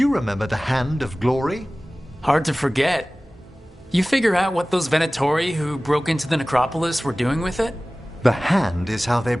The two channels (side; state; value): both; normal; correlation 0.98